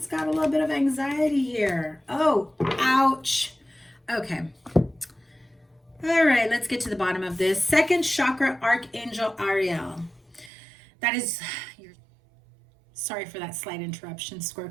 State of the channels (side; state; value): left; drops out; at 10.5 s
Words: got a little bit of anxiety here. Oh, ouch. Okay. All right, let's get to the bottom of this. Second chakra, Archangel Ariel. That is, sorry for that slight interruption,